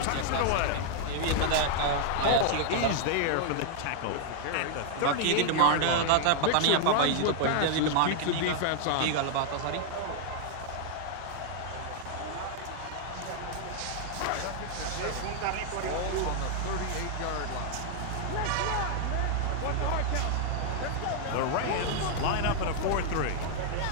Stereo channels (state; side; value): different; both; correlation 0.00